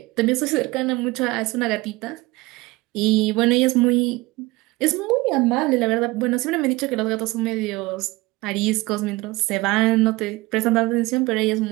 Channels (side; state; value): left; quieter; 21.4 dB